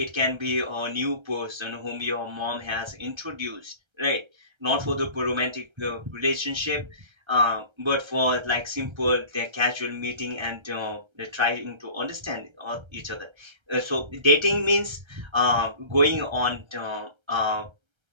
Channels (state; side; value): late; left; 1.3 ms